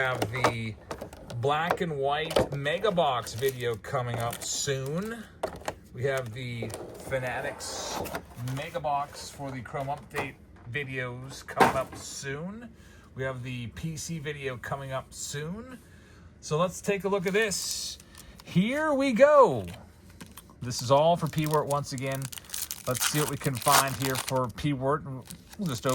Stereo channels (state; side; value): identical; both; correlation 1.00